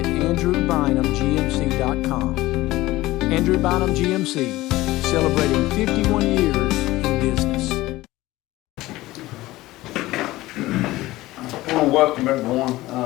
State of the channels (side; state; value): right; quieter; 17.9 dB